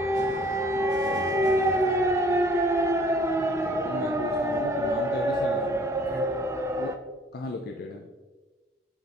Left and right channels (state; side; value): normal; both; correlation 0.55